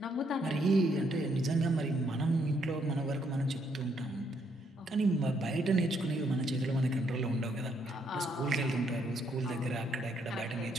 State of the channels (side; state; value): both; normal; correlation 0.72